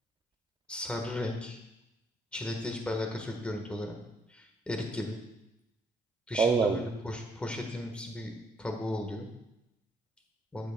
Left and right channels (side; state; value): both; normal; correlation 0.70